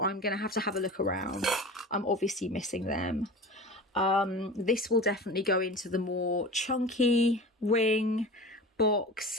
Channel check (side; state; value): both; normal; correlation 0.34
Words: I'm gonna have to have a look around. I'm obviously missing them. This will definitely go into the more chunky ring box,